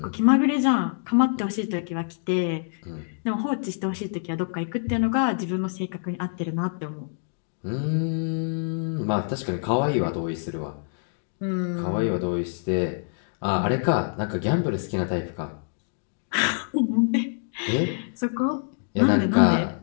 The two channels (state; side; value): silent; right; digital silence